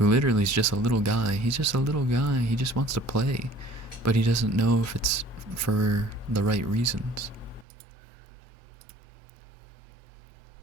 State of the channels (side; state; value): left; drops out; at 7.7 s